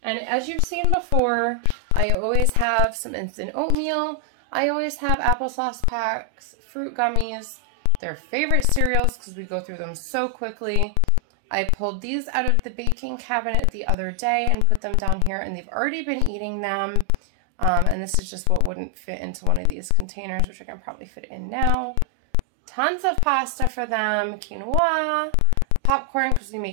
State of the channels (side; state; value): both; different; correlation 0.00